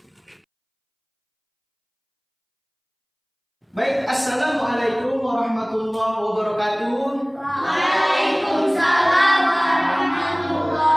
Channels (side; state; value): both; identical; correlation 1.00